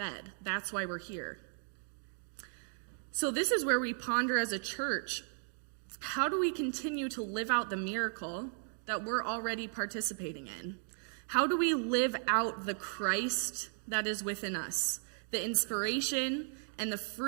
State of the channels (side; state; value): left; silent; 54 dB below the other